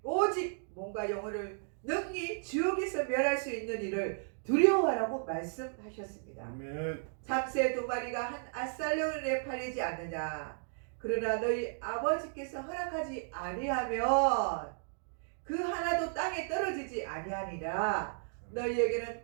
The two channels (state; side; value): silent; left; digital silence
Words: 오직 몸과 영혼을 능히 지옥에서 멸할 수 있는 일을 두려워하라고 말씀하셨습니다. 아멘. 참새 2마리가 한 아살령에 팔리지 않느냐. 그러나 너희 아버지께서 허락하지 아니하면 그 하나도 땅에 떨어지지 아니하니라. 너희에게는